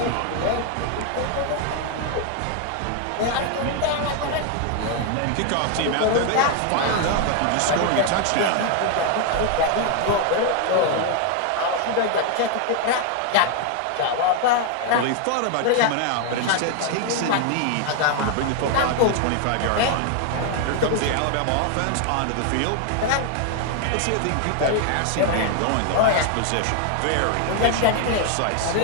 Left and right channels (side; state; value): both; different; correlation 0.00